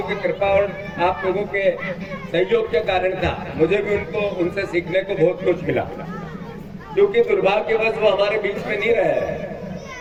की कृपा और आप लोगों के सहयोग के कारण था। मुझे भी उनसे सीखने को बहुत कुछ मिला, क्योंकि दुर्भाग्यवश वो हमारे बीच में नहीं रहे।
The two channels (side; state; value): both; identical; correlation 1.00